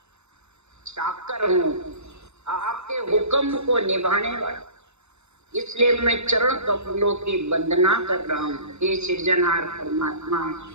चाकर हूँ, आपके हुक्म को निभाने वाला। इसलिए मैं चरण कमलों की वंदना कर रहा हूँ। हे सृजनहार परमात्मा,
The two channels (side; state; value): left; late; 0.81 ms